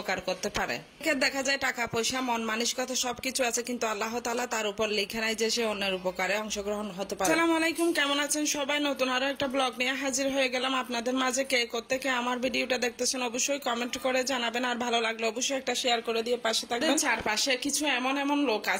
করতে পারে। দেখা যায় টাকা পয়সা মন মানসিকতা সবকিছু আছে, কিন্তু আল্লাহ তাআলা তার উপর লেখা নাই যে সে অন্যের উপকারে অংশগ্রহণ হতে পারে। আসসালামু আলাইকুম, কেমন আছেন সবাই? নতুন আরো একটা ব্লগ নিয়ে হাজির হয়ে গেলাম আপনাদের মাঝে। কে কোত্থেকে আমার ভিডিওটা দেখতেছেন অবশ্যই কমেন্ট করে জানাবেন, আর ভালো লাগলে অবশ্যই একটা শেয়ার করে দিয়ে পাশে থাকবেন। চারপাশে কিছু এমন এমন লোক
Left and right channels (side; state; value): both; identical; correlation 1.00